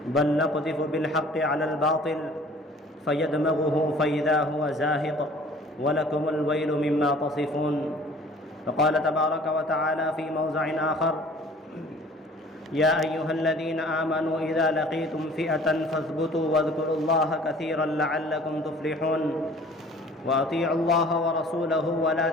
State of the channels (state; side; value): normal; both; correlation 0.50